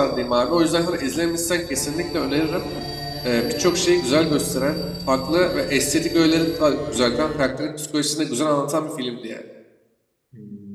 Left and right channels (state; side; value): identical; both; correlation 1.00